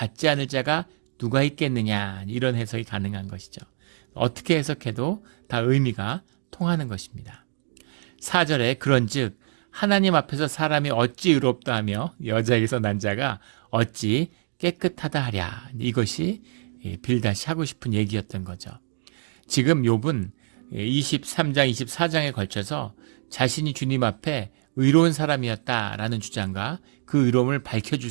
않을 자가 누가 있겠느냐, 이런 해석이 가능한 것이죠. 어떻게 해석해도 다 의미가 통하는 것입니다. 4절에 그런즉 하나님 앞에서 사람이 어찌 의롭다 하며 여자에게서 난 자가 어찌 깨끗하다 하랴. 이것이 빌닷이 하고 싶은 얘기였던 거죠. 지금 욥은 23장, 24장에 걸쳐서 자신이 주님 앞에 의로운 사람이었다라는 주장과 그 의로움을 밝혀줄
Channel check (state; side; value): silent; left; digital silence